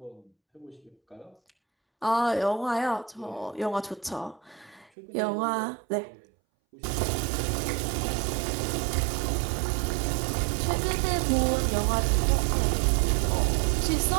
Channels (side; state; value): left; drops out; at 4.9 s